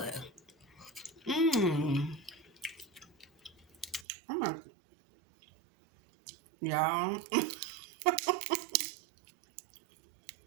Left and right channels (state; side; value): drops out; left; at 4.0 s